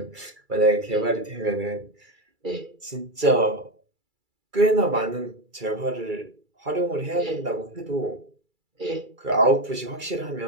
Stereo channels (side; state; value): left; late; 2.3 ms